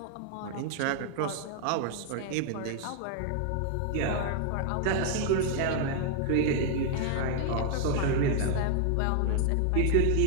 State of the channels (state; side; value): different; both; correlation 0.00